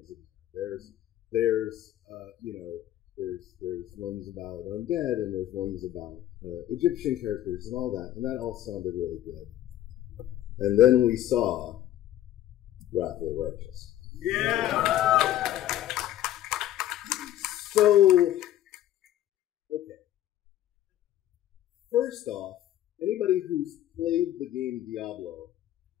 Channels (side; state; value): right; quieter; 12.9 dB